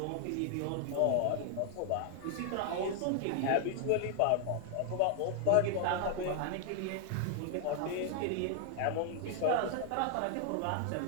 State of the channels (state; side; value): different; both; correlation 0.00